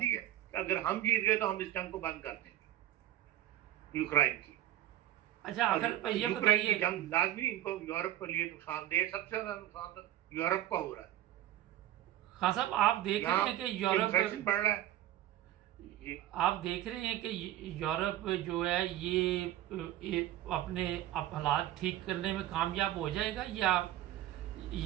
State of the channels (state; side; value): quieter; left; 13.3 dB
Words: है कि अगर हम जीत गए तो हम इस जंग को बंद कर देंगे यूक्रेन की। अच्छा, अगर ये बताइए, जंग लाजमी इनको यूरोप के लिए नुकसान दे। सबसे ज्यादा नुकसान तो यूरोप का हो रहा है। हाँ साहब, आप देख रहे हैं कि यूरोप बढ़ रहा है। आप देख रहे हैं कि यूरोप जो है ये अपने हालात ठीक करने में कामयाब हो जाएगा, या